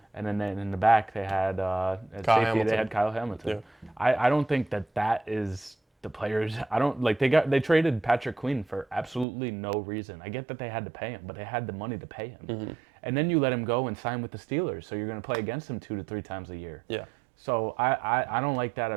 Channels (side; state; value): left; drops out; at 9.2 s